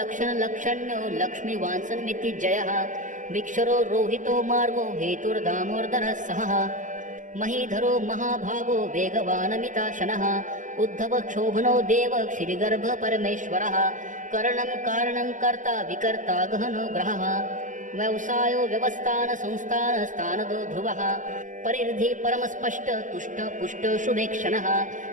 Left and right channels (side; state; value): left; late; 0.37 ms